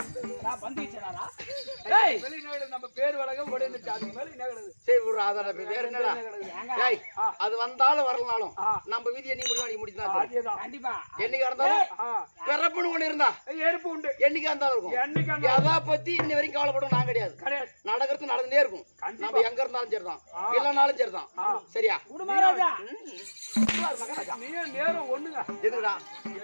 நான் பந்து வச்சேனாரா? ஏய் வெளிநாடு நம்ம பேர் வழக்கம் ஓடிந்துச்சு. அது மேல என்ன கிடக்குது? சரி விடுறா அதோட வேற என்னடா? ஏய் அது வந்தாலும் வரலனாலும் நம்ம வீதியை நீ முடிவாடி முடிச்சா அதேதான் கண்டிப்பா. என்னைக்கு இருந்தாலும் பிறப்புன்னு ஒண்ணு இருந்தா எருப்பு உண்டு. என்னைக்கு இருந்தாலும் இருக்கும். எதா பத்தி இன்ன வரைக்கும் கவலைப்படும் நான் கிடையாது. நடக்கிறது நடந்துட்டே இருக்கும். நம்ம எங்க இருந்தாலும் சரிதான் இல்லனாலும் சரிதான். சரியா மகாராஜா? நீ நேரம் ஒண்ணுங்க. எதுடா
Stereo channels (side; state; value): both; inverted; correlation -1.00